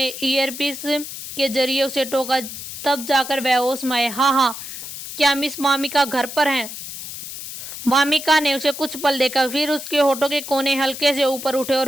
ईयरपीस के जरिए उसे टोका, तब जाकर वह होश में आए। हाँ, क्या मिस वामिका घर पर हैं? वामिका ने उसे कुछ पल देखा, फिर उसके होठों के कोने हल्के से ऊपर उठे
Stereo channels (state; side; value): noise; left; hiss, 10 dB below the sound